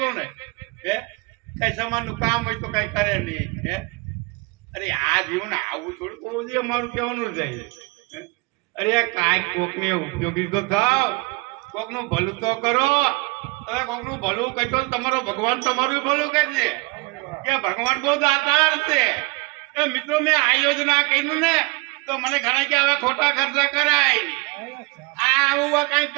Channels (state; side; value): quieter; left; 26.2 dB